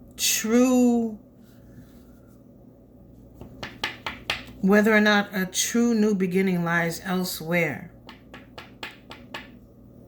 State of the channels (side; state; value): both; identical; correlation 1.00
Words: true, whether or not a true new beginning lies elsewhere.